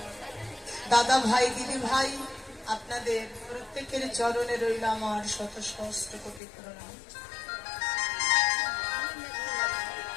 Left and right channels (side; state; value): right; drops out; at 6.4 s